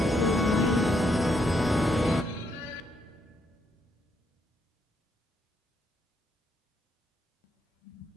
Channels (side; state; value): both; normal; correlation 0.76